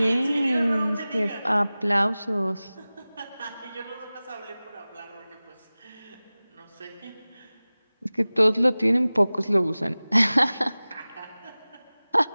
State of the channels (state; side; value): inverted; both; correlation -0.98